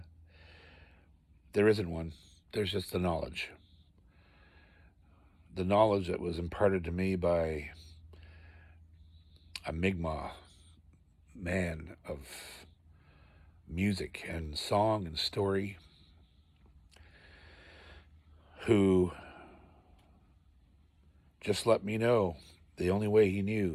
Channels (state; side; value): identical; both; correlation 1.00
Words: there isn't one. There's just the knowledge. The knowledge that was imparted to me by a Mi'kmaq man of music and song and story, who just let me know the only way he